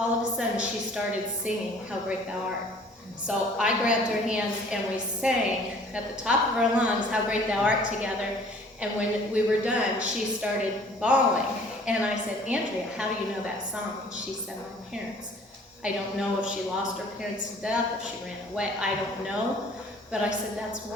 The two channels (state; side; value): normal; both; correlation 0.53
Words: of a sudden, she started singing How Great Thou Art. So I grabbed her hands, and we sang at the top of our lungs How Great Thou Art together. And when we were done, she started bawling. And I said, Andrea, how do you know that song? And she said, my parents. I don't know if she lost her parents to death, if she ran away, I don't know. But I said, that's